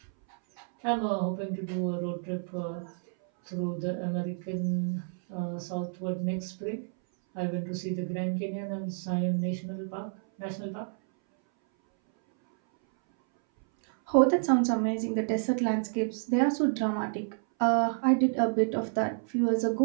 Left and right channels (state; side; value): silent; left; 58 dB below the other